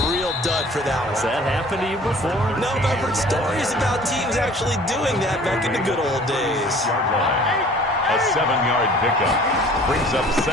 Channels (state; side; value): normal; both; correlation 0.50